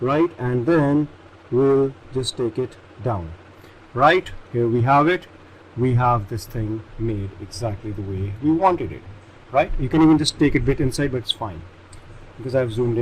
right? And then we'll just take it down. Right, here we have it. We have this thing made exactly the way we wanted it, right? You can even just take it a bit inside, but it's fine because I've zoomed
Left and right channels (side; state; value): both; identical; correlation 1.00